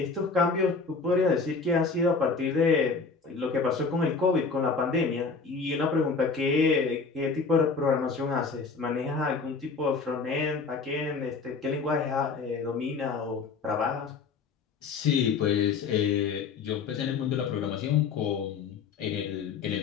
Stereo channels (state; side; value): quieter; right; 4.8 dB